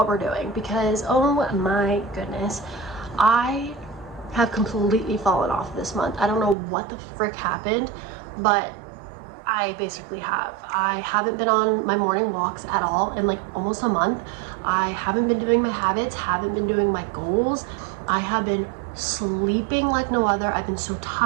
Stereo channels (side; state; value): left; drops out; at 6.6 s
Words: we're doing because, oh my goodness, I have completely fallen off this month. I don't know what the frick happened, but I basically have. I haven't been on my morning walks at all in like almost a month. I haven't been doing my habits, haven't been doing my goals. I have been sleeping like no other. I've been so